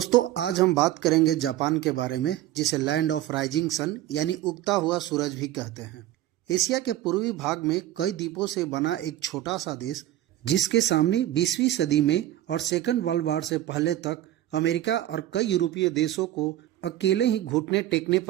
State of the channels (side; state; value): left; quieter; 13.7 dB